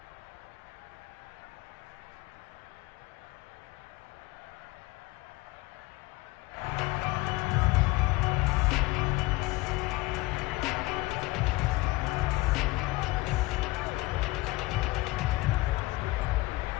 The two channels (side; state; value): right; quieter; 21.0 dB